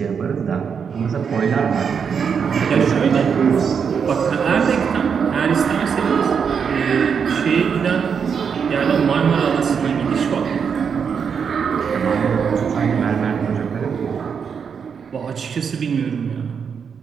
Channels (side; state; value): left; quieter; 6.7 dB